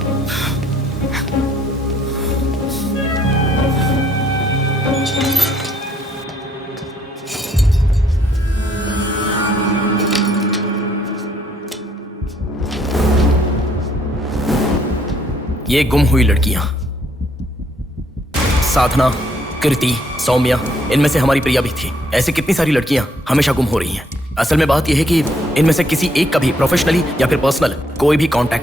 ये गुम हुई लड़कियां साधना, कृति, सौम्या, इनमें से हमारी प्रिया भी थी। ऐसे कितनी सारी लड़कियां हमेशा गुम हो रही हैं। असल में बात यह है कि इनमें से किसी एक का भी प्रोफेशनली या फिर पर्सनल कोई भी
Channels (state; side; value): normal; both; correlation 0.67